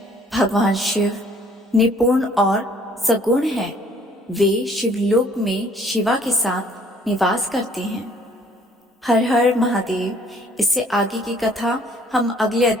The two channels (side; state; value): both; normal; correlation 0.59